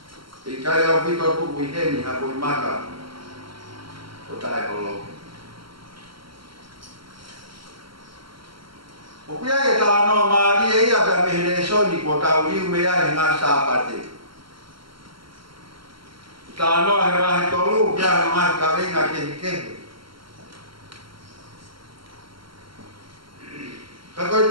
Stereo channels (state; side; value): late; left; 0.74 ms